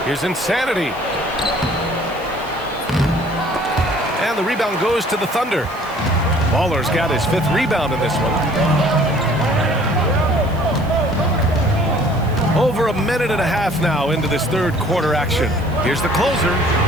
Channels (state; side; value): noise; right; hiss, 25 dB below the sound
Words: Here's Insanity. And the rebound goes to the Thunder. Baller's got his 5th rebound in this one. Over a minute and a half now into this third quarter action. Here's the closer.